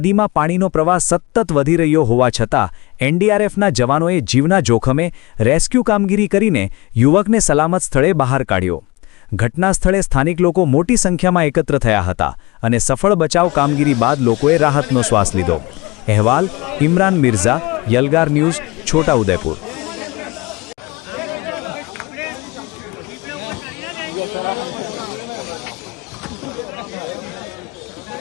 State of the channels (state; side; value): quieter; right; 23.8 dB